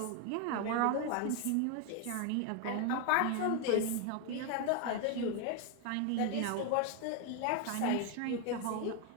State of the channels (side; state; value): both; different; correlation 0.01